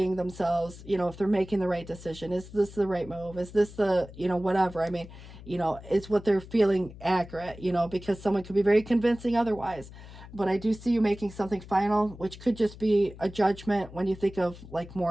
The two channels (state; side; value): noise; left; hum, 16 dB below the sound